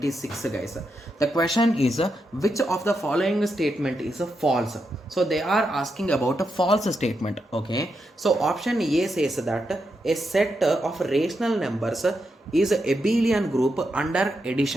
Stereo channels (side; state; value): both; normal; correlation 0.84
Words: guys. The question is which of the following statement is false? So they are asking about a false statement. Okay, so option A says that a set of rational numbers is a abelian group under